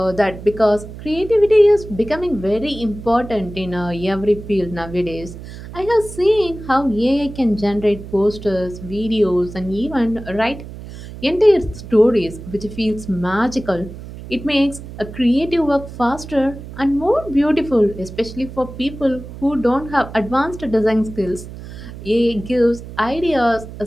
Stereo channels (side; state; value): right; noise; hum, 13 dB below the sound